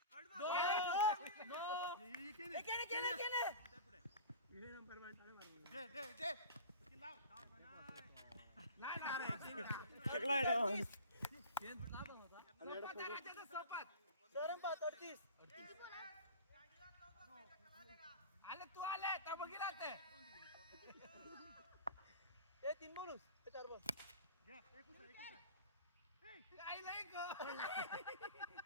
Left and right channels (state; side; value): inverted; both; correlation -0.35